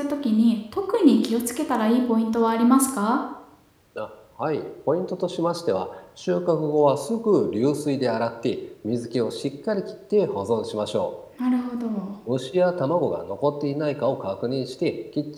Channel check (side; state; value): both; identical; correlation 1.00